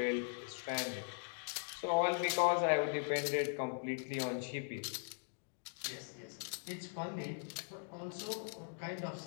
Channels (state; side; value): silent; right; digital silence